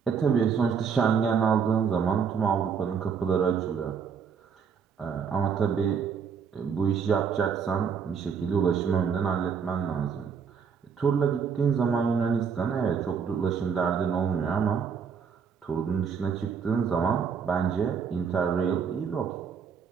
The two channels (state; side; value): quieter; left; 6.5 dB